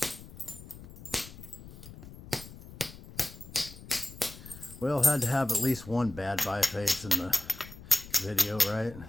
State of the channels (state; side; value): noise; left; rumble, 16 dB below the sound